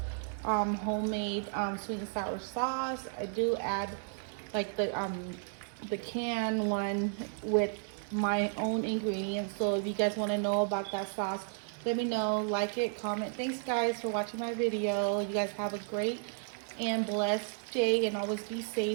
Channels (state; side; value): silent; left; digital silence